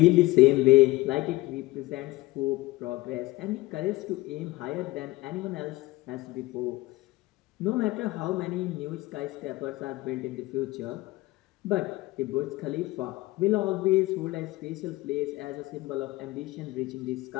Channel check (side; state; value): right; quieter; 19.3 dB